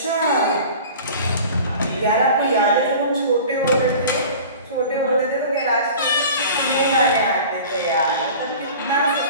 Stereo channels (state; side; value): inverted; both; correlation -0.41